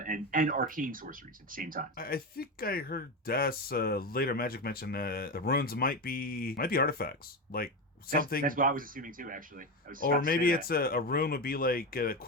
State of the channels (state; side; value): normal; both; correlation 0.17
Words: arcane sorceries at the same time. I think I heard Des later Magic mention the runes might be artifacts, like something. That's what I was assuming too, actually. Or maybe it's a rune would be like